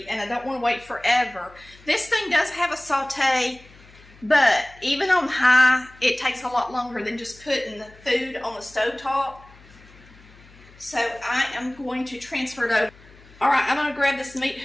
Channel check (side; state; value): left; noise; hum, 24 dB below the sound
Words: and I don't want to wait forever. This thing does have a saute, but even on high, it takes a lot longer than just putting the food on the stovetop. So I am going to transfer it over. All right, I'm going to grab this meat